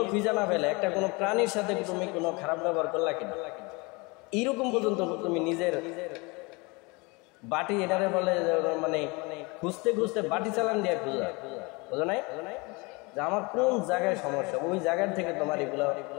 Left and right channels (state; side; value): quieter; right; 27.1 dB